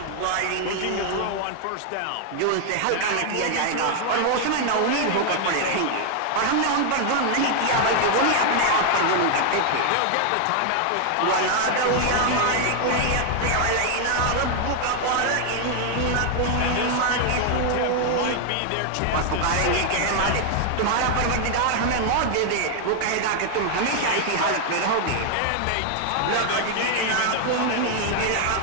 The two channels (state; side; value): different; both; correlation 0.00